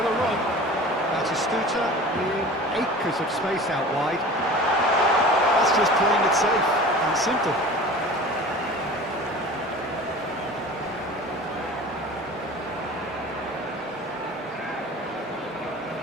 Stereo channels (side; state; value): both; normal; correlation 0.39